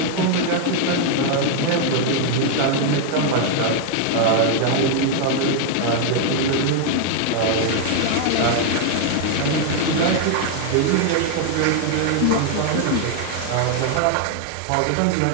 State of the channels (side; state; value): both; different; correlation 0.00